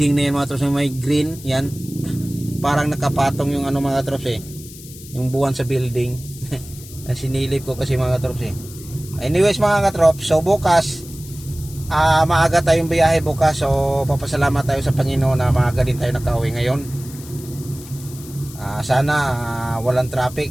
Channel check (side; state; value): left; noise; hiss, 17 dB below the sound